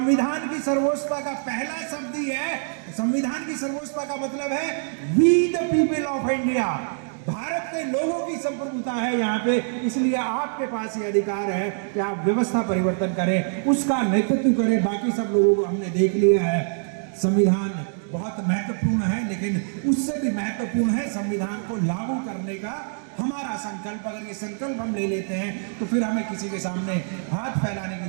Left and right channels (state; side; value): silent; left; 62 dB below the other